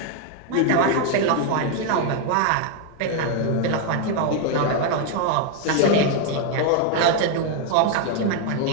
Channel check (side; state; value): both; different; correlation 0.00